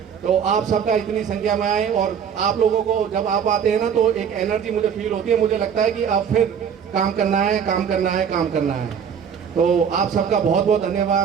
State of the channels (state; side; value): quieter; left; 7.6 dB